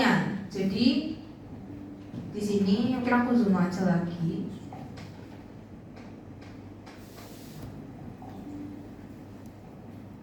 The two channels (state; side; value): identical; both; correlation 1.00